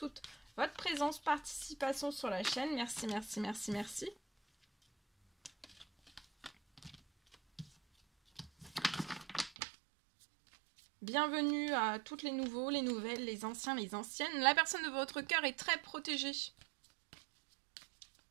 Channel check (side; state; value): left; drops out; at 9.5 s